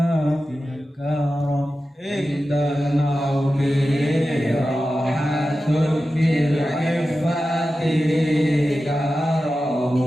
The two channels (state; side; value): normal; both; correlation 0.93